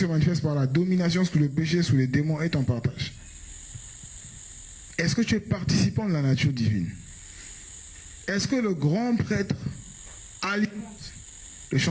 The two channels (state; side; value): identical; both; correlation 1.00